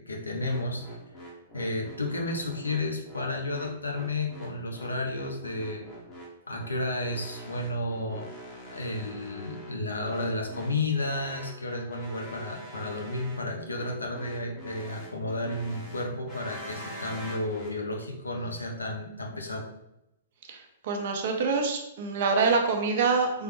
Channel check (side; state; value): both; inverted; correlation -0.47